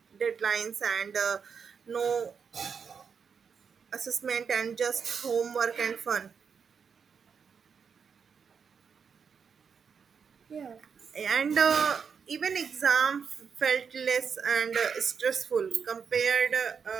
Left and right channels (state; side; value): quieter; left; 6.4 dB